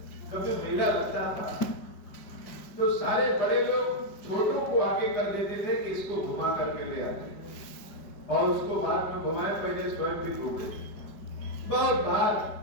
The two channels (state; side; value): late; right; 5.2 ms